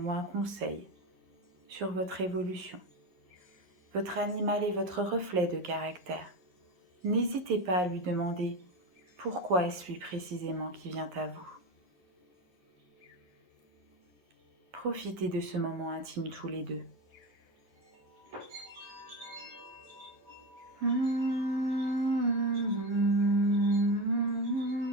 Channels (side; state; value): left; late; 11 ms